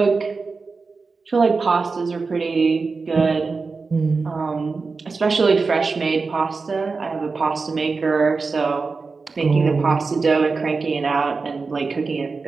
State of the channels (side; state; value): left; quieter; 4.4 dB